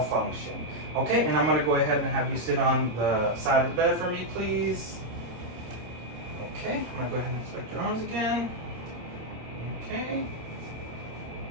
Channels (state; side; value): late; left; 26 ms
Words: function. Okay, and I'm going to go ahead and have you sit on the side of the bed for me, please. Okay, I'm going to go ahead and inspect your arms again. Okay.